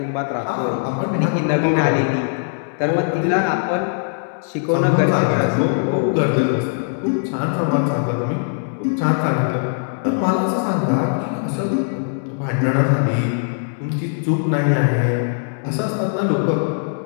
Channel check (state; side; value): silent; right; 63 dB below the other